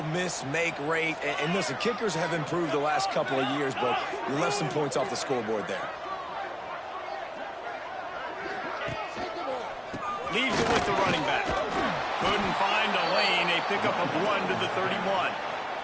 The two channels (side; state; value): both; identical; correlation 1.00